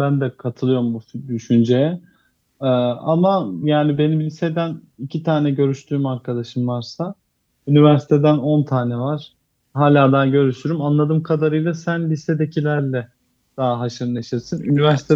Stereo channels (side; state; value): both; identical; correlation 1.00